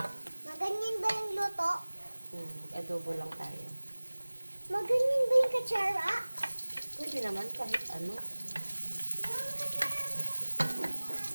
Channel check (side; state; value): both; inverted; correlation -1.00